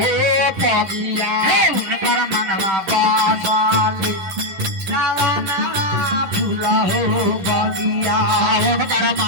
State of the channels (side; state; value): left; late; 11 ms